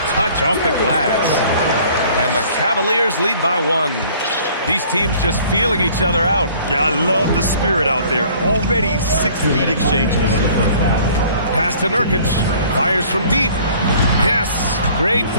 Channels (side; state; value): both; inverted; correlation -0.54